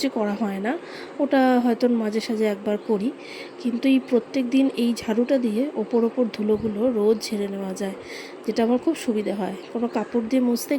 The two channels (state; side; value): identical; both; correlation 1.00